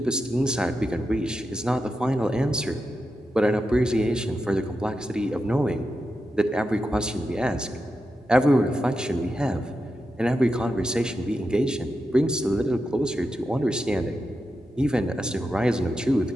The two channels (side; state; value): both; normal; correlation 0.88